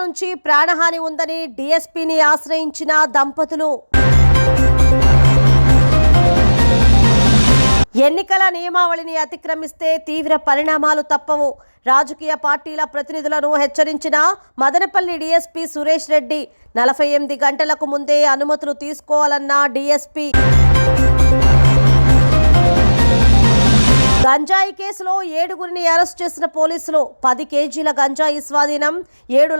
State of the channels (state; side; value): inverted; both; correlation -1.00